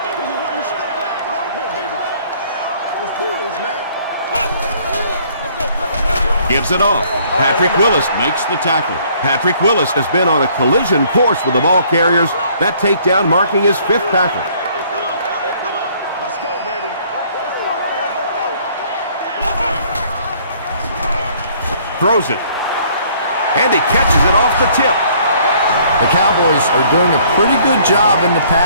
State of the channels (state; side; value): inverted; both; correlation -0.60